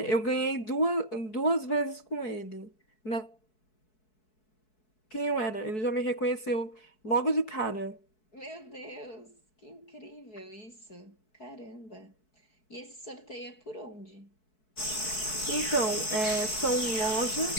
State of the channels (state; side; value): late; right; 4.6 ms